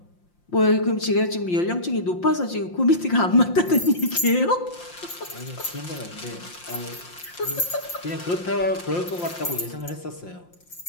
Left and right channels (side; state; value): right; late; 5.7 ms